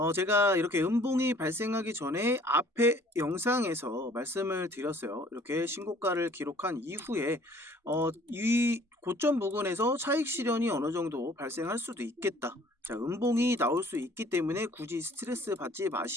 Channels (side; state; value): both; normal; correlation 0.55